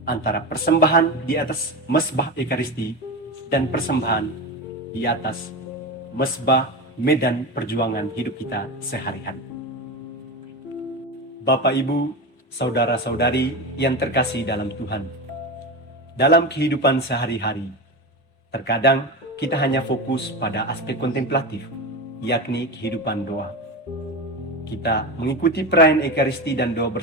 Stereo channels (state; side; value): normal; both; correlation 0.21